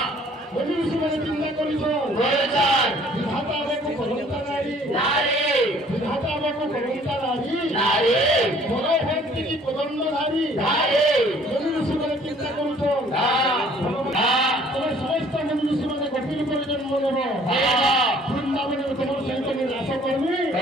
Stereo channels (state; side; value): normal; both; correlation 0.56